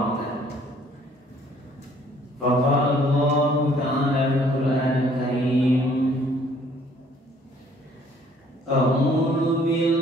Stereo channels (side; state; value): both; normal; correlation 0.60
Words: Faqala Allah ta'ala fil Qur'anil Karim, a'udzu